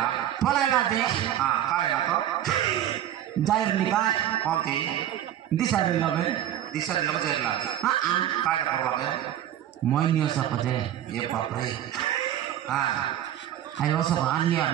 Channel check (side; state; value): left; quieter; 11.5 dB